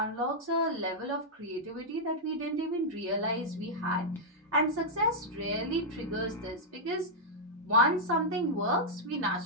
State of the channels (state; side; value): normal; both; correlation -0.06